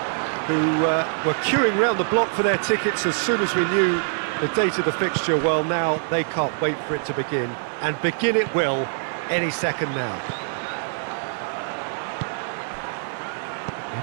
who were queuing round the block for their tickets as soon as we knew the date of the fixture, well, now they can't wait for it to begin. And begin it will any second now.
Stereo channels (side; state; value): left; silent; 56 dB below the other